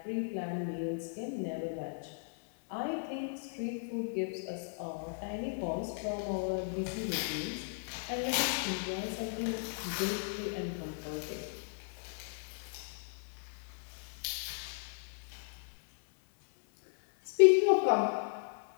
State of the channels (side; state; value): right; silent; 54 dB below the other